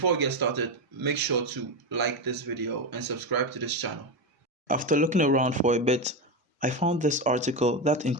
we get started, make sure to like this video and subscribe to this channel. After looking around for a bit, I found this article that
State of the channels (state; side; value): normal; both; correlation 0.14